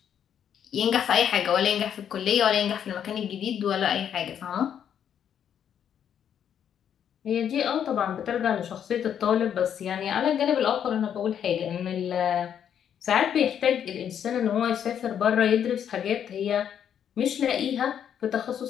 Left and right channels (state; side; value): quieter; right; 8.9 dB